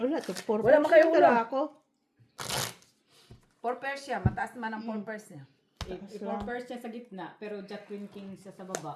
to. 4 Wala mo kayo ulo. ako. 4 pairs siya. Mataas naman ang 4 pairs niya. I-first siya sa gitna, pero jack queen king siya sa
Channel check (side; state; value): both; identical; correlation 1.00